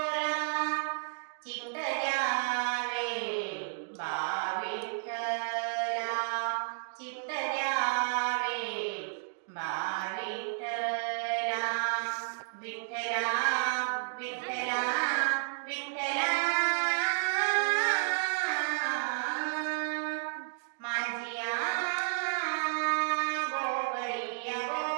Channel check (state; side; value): silent; left; digital silence